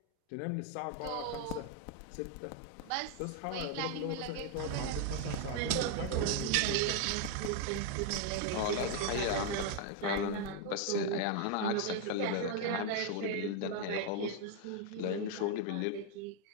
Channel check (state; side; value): different; both; correlation 0.01